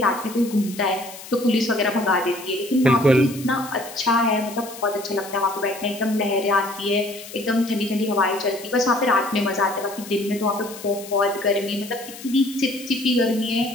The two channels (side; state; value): left; noise; hiss, 15 dB below the sound